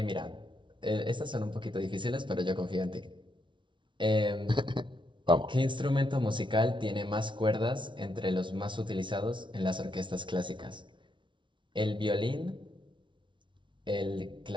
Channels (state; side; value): late; left; 0.24 ms